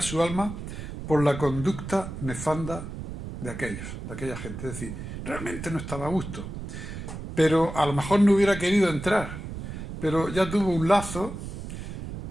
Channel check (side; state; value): right; noise; rumble, 8 dB below the sound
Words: su alma por la conducta nefanda de aquella gente. Es decir, realmente no estaba a gusto. Pero a lo mejor no hubiera querido entrar. Pero ya tuvo un lazo